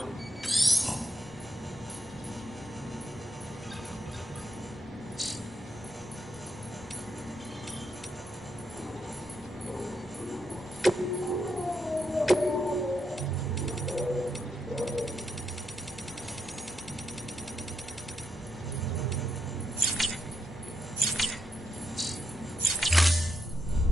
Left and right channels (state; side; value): normal; both; correlation 0.82